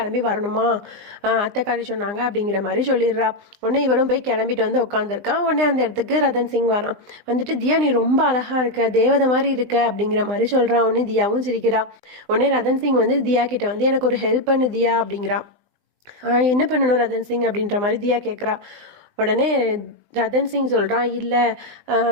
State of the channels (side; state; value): left; late; 20 ms